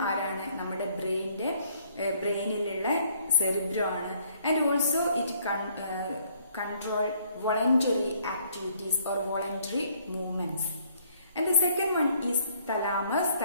ആരാണ്? നമ്മുടെ ബ്രെയിനിലുള്ള സെറിബ്രം ആണ്. And also it control voluntary activities or voluntary movements. And the second one is thalamus.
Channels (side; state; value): both; inverted; correlation -0.64